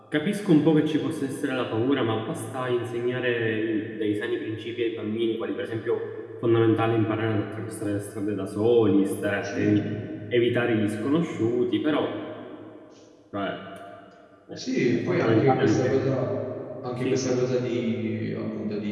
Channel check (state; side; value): identical; both; correlation 1.00